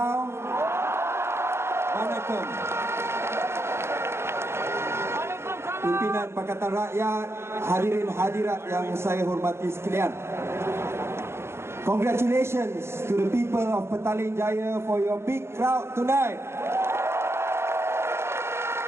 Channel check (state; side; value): late; left; 0.12 ms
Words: Waalaikum. Pimpinan Pakatan Rakyat, hadirin hadirat yang saya hormati sekalian. Congratulations to the people of Petaling Jaya for your big crowd tonight.